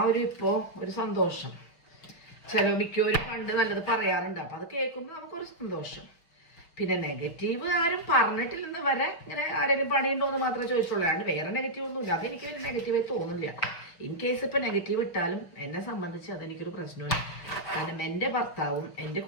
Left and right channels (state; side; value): late; right; 6.0 ms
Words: ഒരു ഇപ്പോ ഒരു സന്തോഷം. മിക്കവരും പണ്ട് നല്ലത് പറയാറുണ്ട്, അപ്പൊ അത് കേൾക്കുമ്പോൾ നമുക്കൊരു സന്തോഷം. പിന്നെ നെഗറ്റീവ് ആരും പറഞ്ഞിട്ടില്ലെന്ന് വരെ ഇങ്ങനെ ആരെങ്കിലും പണിയുണ്ടോ എന്ന് മാത്രമേ ചോദിച്ചുള്ളൂ, അല്ലാണ്ട് വേറെ നെഗറ്റീവ് ഒന്നുമില്ല. അതെനിക്ക് വലിയ നെഗറ്റീവായി തോന്നുന്നില്ല. ഇൻ കേസ് ഇപ്പൊ നെഗറ്റീവ് ഇട്ടാലും എന്നെ സംബന്ധിച്ച് അതെനിക്കൊരു പ്രശ്നമില്ല. കാരണം എൻ്റെ ഭർത്താവും എൻ്റെ